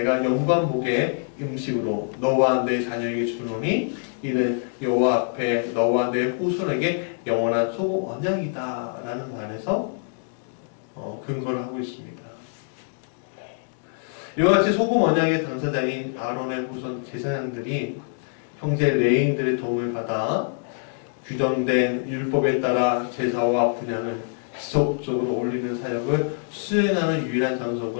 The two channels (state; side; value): silent; right; digital silence